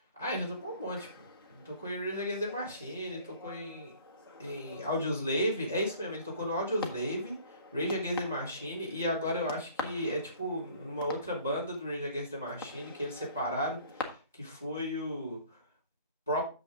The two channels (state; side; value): inverted; both; correlation -0.51